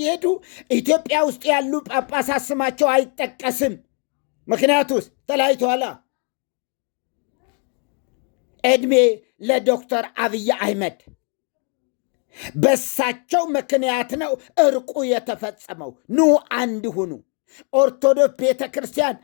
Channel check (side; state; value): right; quieter; 37.4 dB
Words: ኢትዮጵያ ውስጥ ያሉ ጳጳሳት ስማቸው አይጠቀስም። ምክንያቱስ ተለያይተዋላ። ዕድሜ ለዶክተር አብይ አህመድ በሳቸው ምክንያት ነው እርቁ የተፈጸመው። ኑ አንድ ሁኑ፣ ኦርቶዶክስ ቤተ ክርስቲያን